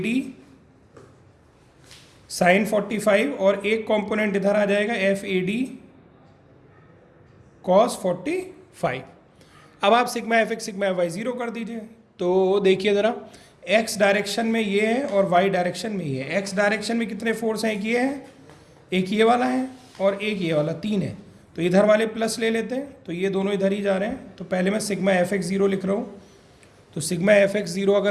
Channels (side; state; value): both; identical; correlation 1.00